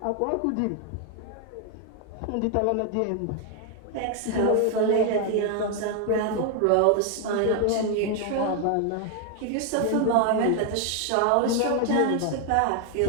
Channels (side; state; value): both; different; correlation 0.00